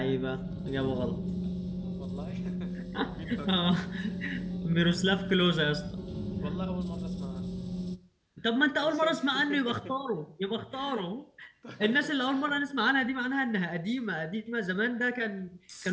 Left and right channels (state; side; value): identical; both; correlation 1.00